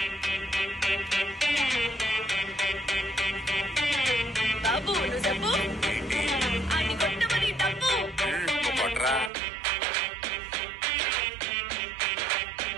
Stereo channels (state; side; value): drops out; left; at 9.3 s